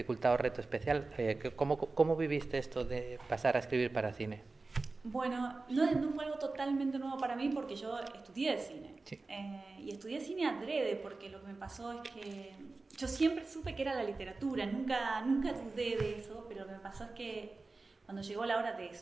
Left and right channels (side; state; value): left; quieter; 3.6 dB